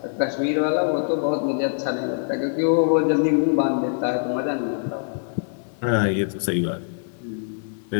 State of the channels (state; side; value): silent; right; 63 dB below the other